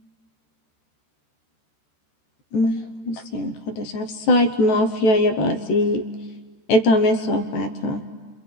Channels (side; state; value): right; late; 14 ms